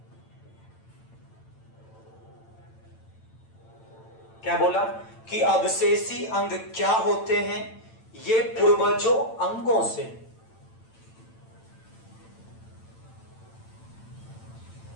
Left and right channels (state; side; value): late; right; 8.9 ms